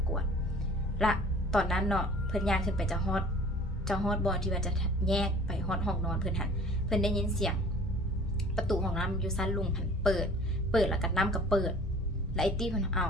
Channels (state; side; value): normal; both; correlation 0.48